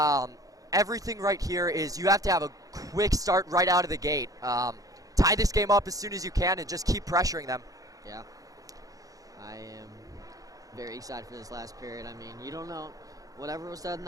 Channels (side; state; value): left; late; 0.17 ms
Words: Everything right here is you have to have a quick start right out of the gate. Tie this game up as soon as you can and just keep pressuring them. Yeah. I am very excited for this last period. I mean, you don't know. Whatever was said in